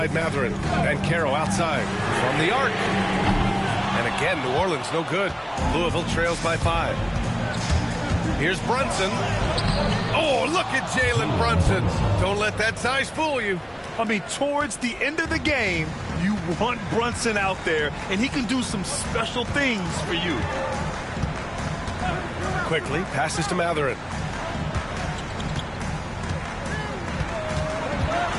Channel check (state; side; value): identical; both; correlation 1.00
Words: Mathurin. And Carroll outside. From the arc. And again, New Orleans no good. Louisville trails by 5. Here's Brunson. Oh, look at Jalen Brunson. Don't let that size fool you. I mean, towards the end of the game, you want Brunson out there, and he can do some special things for you. Quickly passes to Mathurin.